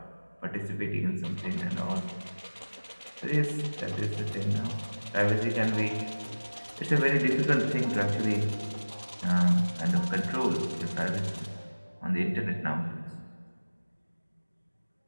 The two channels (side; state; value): both; inverted; correlation -1.00